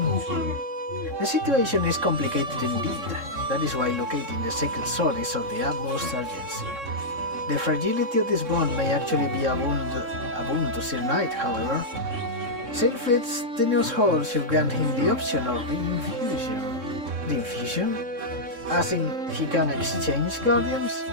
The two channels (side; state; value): left; late; 3.6 ms